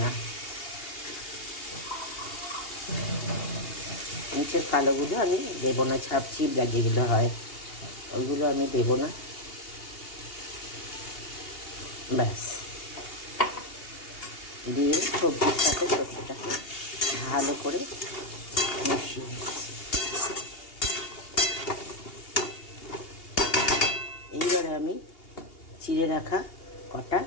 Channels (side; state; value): right; late; 2.8 ms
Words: না। নিচের কালোগুলো আমি দেবো না, ছাপচিপড়া যেগুলো হয় ওইগুলো আমি দেবো না। ব্যাস, দিয়ে সবজির সাথে সর্ষেটাকে ভালো করে মিশিয়ে নিচ্ছি। এইবারে আমি চিড়ে রাখা কটা